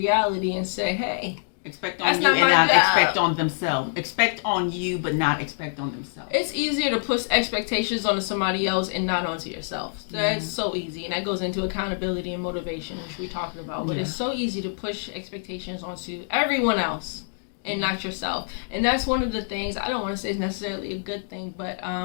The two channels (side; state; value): right; silent; digital silence